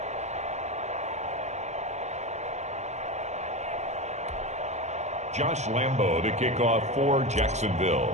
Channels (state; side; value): late; left; 0.33 ms